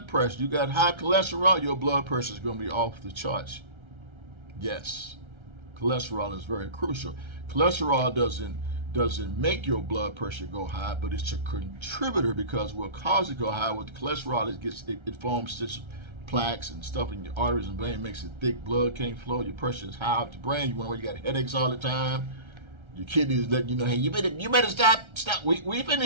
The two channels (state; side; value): late; left; 1.3 ms